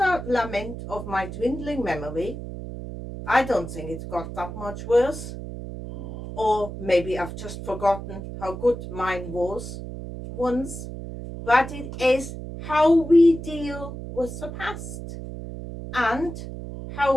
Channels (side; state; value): right; noise; hum, 9 dB below the sound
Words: lament of my dwindling memory. I don't think it's got that much worse. Or maybe I've just forgotten how good mine was once. But it is how we deal with the past, and